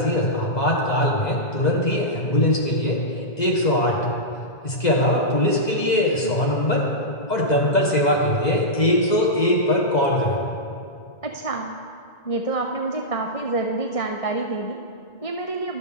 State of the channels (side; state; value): right; late; 2.0 ms